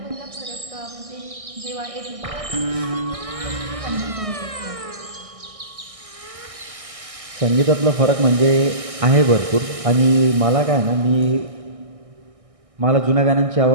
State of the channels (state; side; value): late; left; 1.6 ms